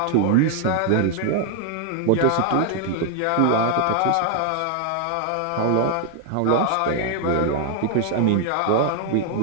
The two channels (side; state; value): both; different; correlation 0.00